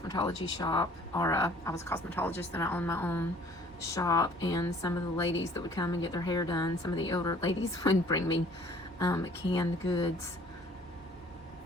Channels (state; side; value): normal; both; correlation 0.54